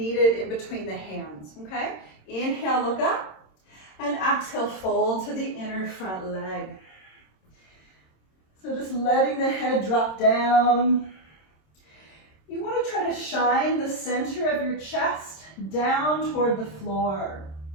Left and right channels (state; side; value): late; right; 26 ms